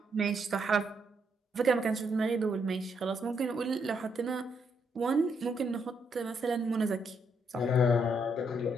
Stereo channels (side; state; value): both; normal; correlation 0.76